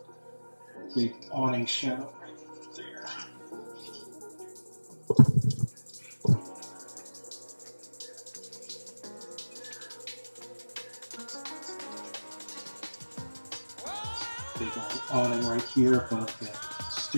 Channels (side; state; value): both; inverted; correlation -1.00